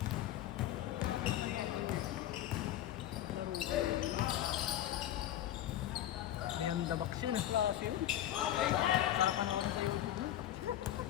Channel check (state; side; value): quieter; right; 12.5 dB